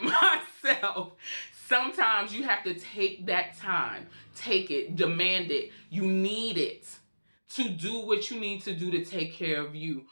myself. Sometimes you have to take that time. Take it. Demand it. You need it to do what you need to do to take care of you.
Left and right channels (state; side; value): inverted; both; correlation -1.00